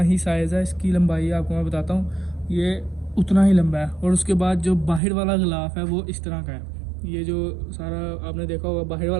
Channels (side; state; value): left; drops out; at 5.0 s